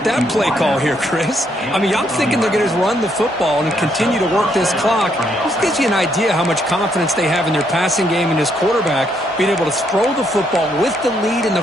that play call here, Chris? I mean, I'm thinking they're going to run the football and continue to work this clock. This gives you an idea how much confidence they have in their passing game and his quarterback being able to throw the football with the lead in the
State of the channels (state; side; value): normal; both; correlation 0.73